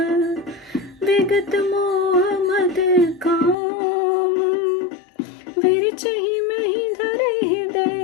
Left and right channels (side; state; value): right; drops out; at 3.6 s